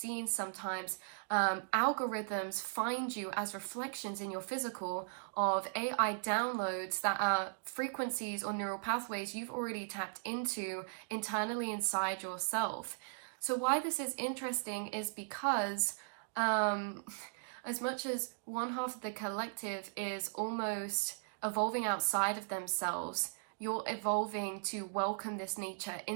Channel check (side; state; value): left; silent; digital silence